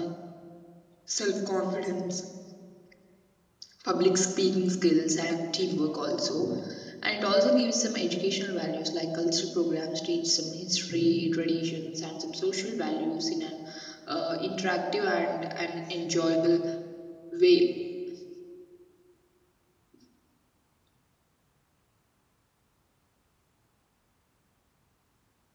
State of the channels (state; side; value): identical; both; correlation 1.00